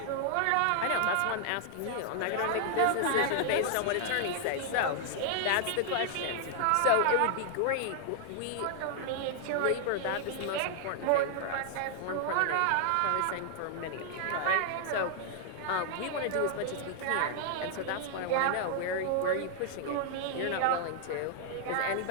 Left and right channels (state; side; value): different; both; correlation 0.00